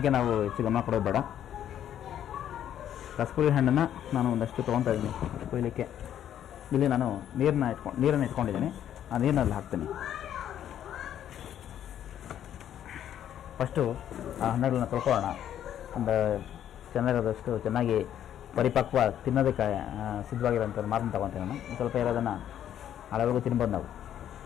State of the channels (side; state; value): right; quieter; 10.5 dB